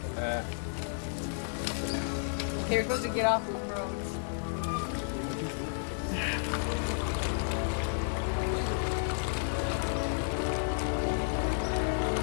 Here goes to get off.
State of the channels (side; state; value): right; silent; digital silence